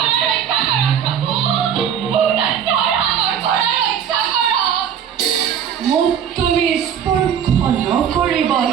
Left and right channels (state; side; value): quieter; left; 8.6 dB